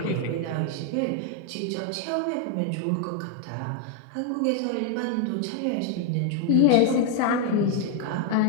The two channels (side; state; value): both; different; correlation 0.01